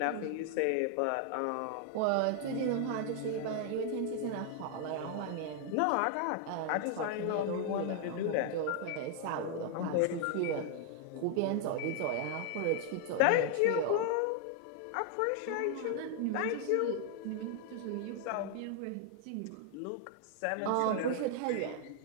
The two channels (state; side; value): different; both; correlation 0.00